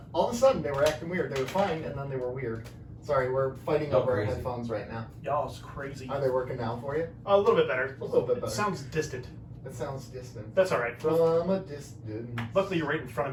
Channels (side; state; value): both; identical; correlation 1.00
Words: all of a sudden they were acting weird. They were fine, and then they were weird. Sorry, we're fighting over our crazy. headphones right now. Y'all is crazy. Are they working now for you? A little bit better. A little bit better. It sounds distant. It sounds distant. That's all right. From a distance. Luckily, you're right in front of